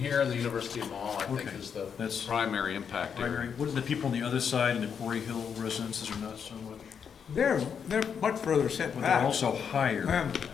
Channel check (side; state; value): right; quieter; 7.1 dB